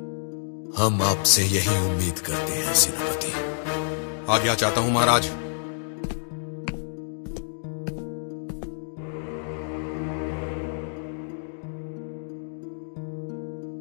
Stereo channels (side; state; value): right; silent; digital silence